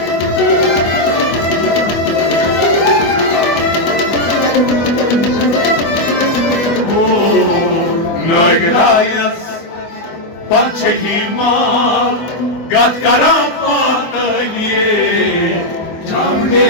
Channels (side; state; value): right; late; 24 ms